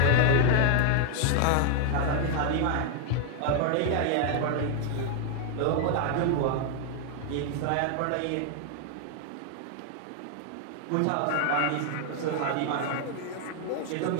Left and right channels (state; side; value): different; both; correlation 0.00